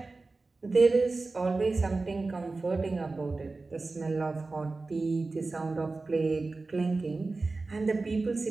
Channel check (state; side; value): quieter; left; 3.6 dB